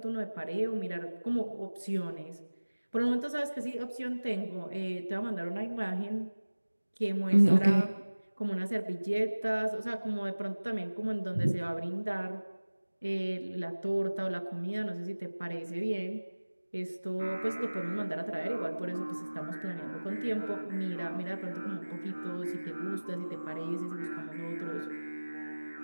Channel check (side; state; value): both; inverted; correlation -1.00